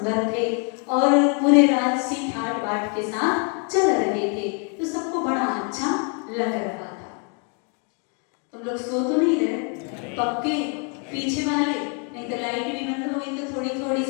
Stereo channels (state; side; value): quieter; right; 37.4 dB